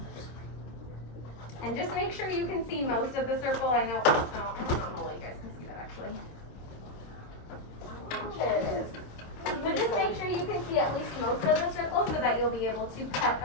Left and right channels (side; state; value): right; late; 26 ms